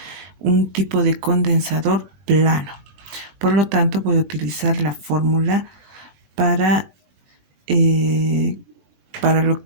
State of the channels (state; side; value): late; left; 21 ms